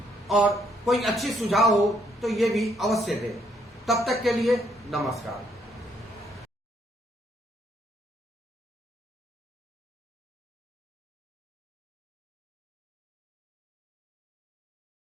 और कोई अच्छी सुझाव हो तो ये भी अवश्य दें। तब तक के लिए नमस्कार।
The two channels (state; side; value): normal; both; correlation 0.71